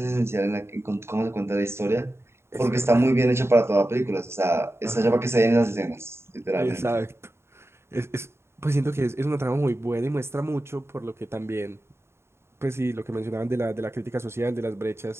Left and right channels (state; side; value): late; left; 0.12 ms